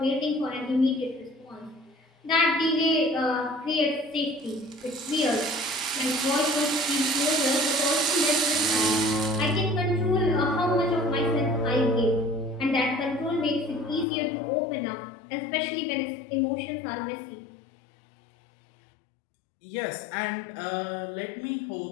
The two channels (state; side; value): drops out; right; at 14.1 s